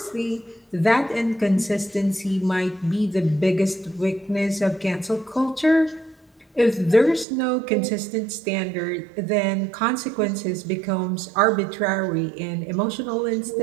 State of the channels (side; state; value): left; drops out; at 7.2 s